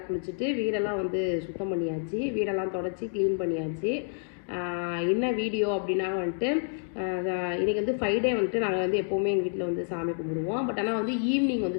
குளிச்சுட்டு வீடெல்லாம் வந்து சுத்தம் பண்ணியாச்சு. வீடெல்லாம் தொடச்சி க்ளீன் பண்ணியாச்சு. என்ன வீடியோ அப்படின்னா வந்துட்டு இன்றைக்கி வந்து ஃப்ரைடே வந்துட்டு நாங்கள் வந்து எப்போவுமே எங்கள் வீட்டில் வந்து சாமி கும்பிடுவோம். பட் ஆனால் வந்து ஈவினிங்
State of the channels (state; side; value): silent; right; digital silence